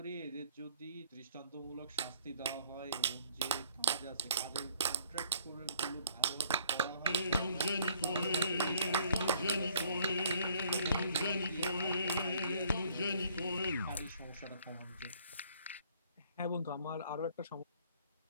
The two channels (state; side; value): inverted; both; correlation -0.61